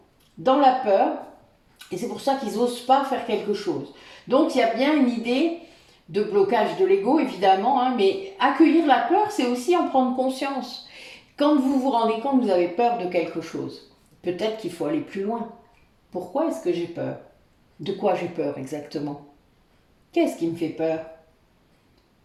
dans la peur et c'est pour ça qu'ils n'osent pas faire quelque chose. Donc il y a bien une idée de blocage de l'ego, évidemment, hein, mais accueillir la peur, c'est aussi en prendre conscience. Quand vous vous rendez compte que vous avez peur de quelque chose, peut-être qu'il faut aller plus loin. Pourquoi est-ce que j'ai peur? De quoi j'ai peur exactement? Qu'est-ce qui me fait peur?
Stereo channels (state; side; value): identical; both; correlation 1.00